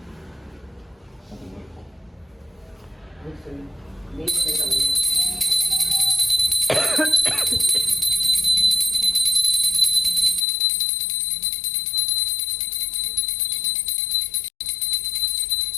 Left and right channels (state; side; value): drops out; right; at 10.5 s